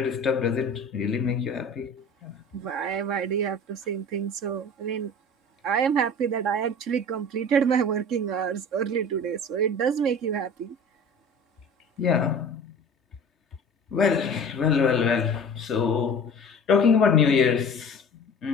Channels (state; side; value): normal; both; correlation 0.40